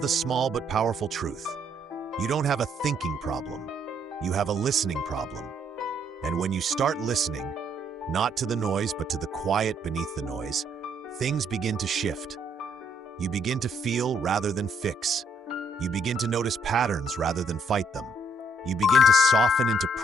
small but powerful truth. You don't have a thinking problem. You have a listening problem. And when you start listening, not to the noise but to the quiet beneath the noise, things begin to shift. You begin to feel rather than fix. You begin to notice patterns rather than fight them. You begin to soften into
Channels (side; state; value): both; normal; correlation 0.69